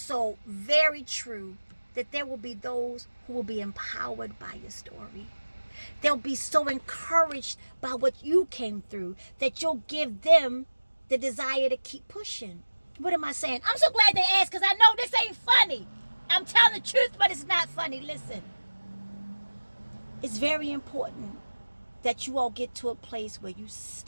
very true that there will be those who will be empowered by your story. They'll be so encouraged by what you came through that you'll give them the desire to keep pushing. What am I saying? I'm so glad they asked because I know this ain't funny. I'm telling the truth, but it's not funny. Listen. It's very important that you all get to a place where you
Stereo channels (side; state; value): both; inverted; correlation -1.00